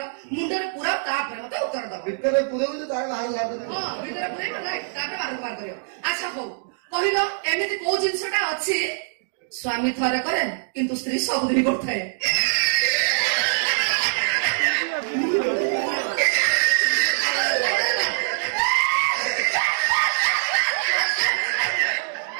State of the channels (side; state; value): left; silent; digital silence